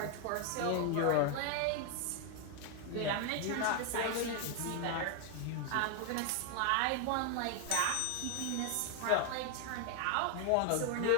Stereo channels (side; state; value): both; different; correlation 0.00